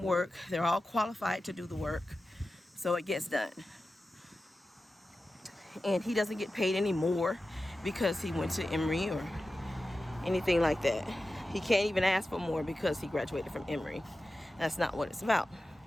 work. They're all qualified to do the work. So it gets done. And he doesn't get paid any more because he went to Emory or anything like that. He can't even ask for more because he graduated from Emory. That's not what it's about.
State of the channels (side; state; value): both; normal; correlation 0.94